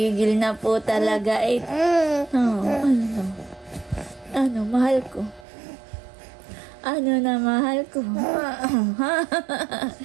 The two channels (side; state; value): left; drops out; at 5.5 s